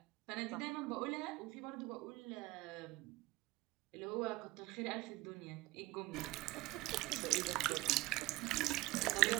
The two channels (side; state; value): left; quieter; 20.0 dB